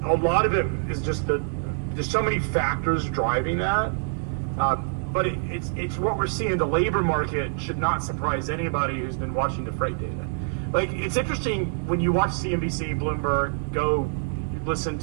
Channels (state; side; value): silent; left; digital silence